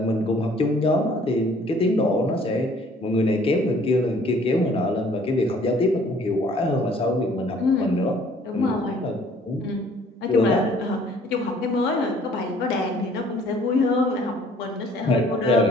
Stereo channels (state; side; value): normal; both; correlation 0.57